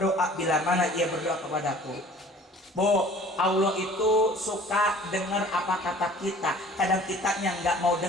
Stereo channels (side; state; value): both; normal; correlation 0.48